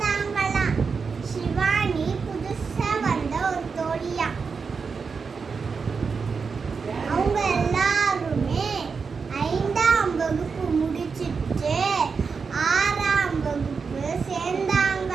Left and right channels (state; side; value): quieter; left; 5.3 dB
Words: சிவானி புதுசா வந்த ஒரு தோழியா. அவங்க எல்லாருமே 5ஆம் வகுப்பு முடிச்சிட்டு 6ஆம் வகுப்பு